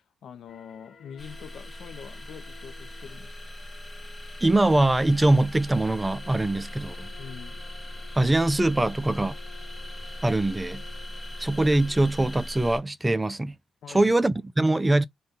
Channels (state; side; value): normal; both; correlation 0.98